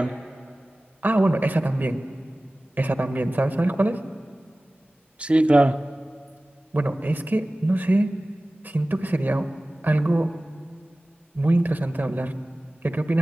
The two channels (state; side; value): normal; both; correlation 0.97